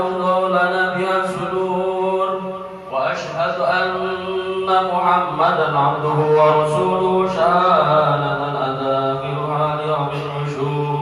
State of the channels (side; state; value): both; identical; correlation 1.00